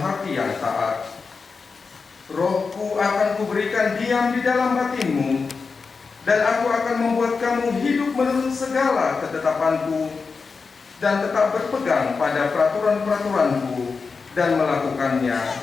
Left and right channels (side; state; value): right; quieter; 4.8 dB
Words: hati yang taat. Rohku akan kuberikan diam di dalam batinmu, dan aku akan membuat kamu hidup menurut segala ketetapanku, dan tetap berpegang pada peraturan-peraturanku, dan